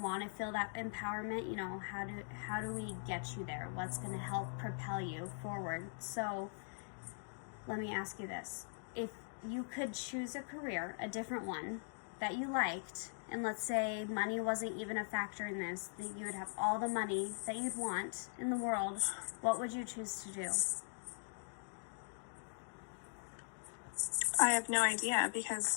to feel that empowerment, you know, how do we get you there? What's going to help propel you forward? So let me ask you this. If you could choose a career, a different one that you liked, and let's say money wasn't even a factor in this, that you would have all the money that you'd want in the world, what would you choose to do? I have no idea,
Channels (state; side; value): silent; right; digital silence